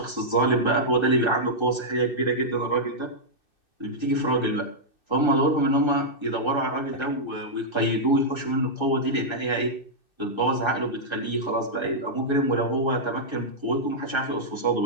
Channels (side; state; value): right; late; 2.6 ms